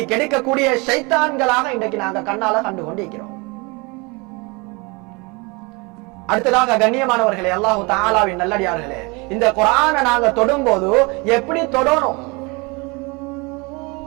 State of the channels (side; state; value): left; quieter; 28.0 dB